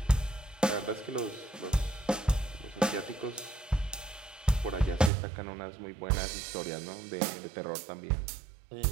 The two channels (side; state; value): left; drops out; at 5.1 s